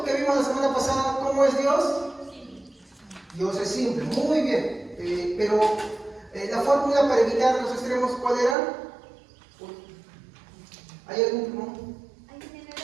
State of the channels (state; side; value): drops out; left; at 8.6 s